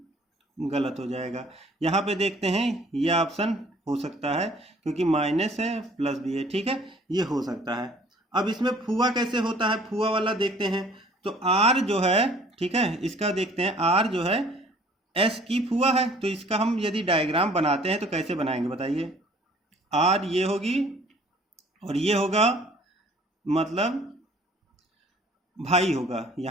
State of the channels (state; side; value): normal; both; correlation 0.55